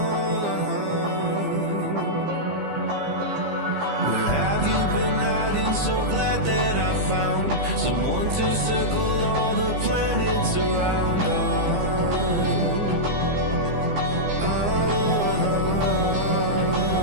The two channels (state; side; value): late; left; 15 ms